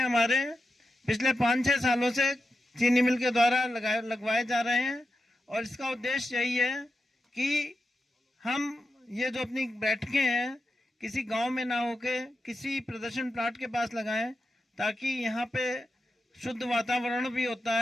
हमारे पिछले 5-6 सालों से चीनी मिल के द्वारा लगवाए जा रहे हैं, और इसका उद्देश्य यही है कि हम ये जो अपनी बैठकें हैं किसी गांव में ना होके किसी प्रदर्शन प्लाट के पास लगाएं, ताकि यहाँ पे शुद्ध वातावरण भी होता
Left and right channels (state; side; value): normal; both; correlation 0.89